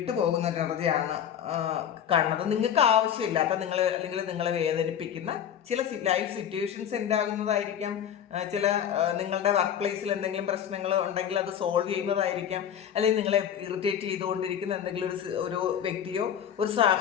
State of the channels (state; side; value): quieter; right; 9.2 dB